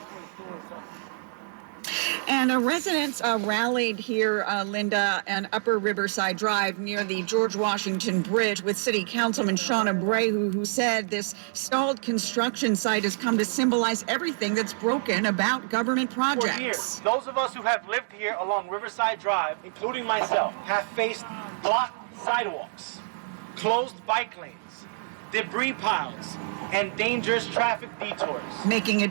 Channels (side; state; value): left; silent; digital silence